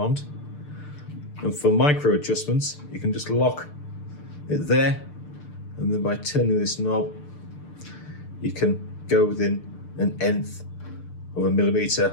And for micro adjustments, you can just lock it there, and then by turning this knob, you can go within an nth of a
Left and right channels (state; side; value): late; right; 6.7 ms